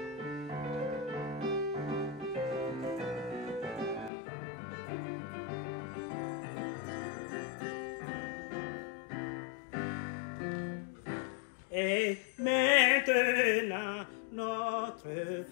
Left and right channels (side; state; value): right; drops out; at 4.1 s